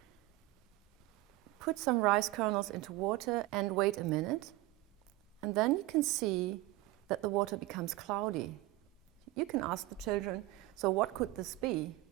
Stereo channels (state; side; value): quieter; left; 18.2 dB